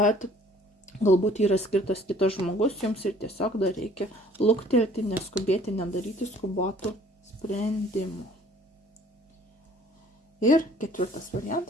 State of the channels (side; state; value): both; normal; correlation 0.56